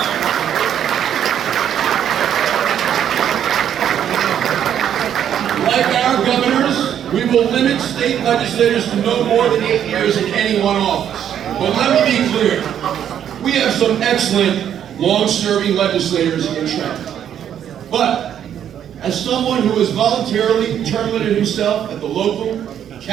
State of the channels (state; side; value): quieter; left; 9.6 dB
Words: Like our governors, we will limit state legislators to no more than 8 years in any one office. But let me be clear, we have some excellent, long-serving legislators in Trenton. But as someone who has voluntarily term limited himself at the local,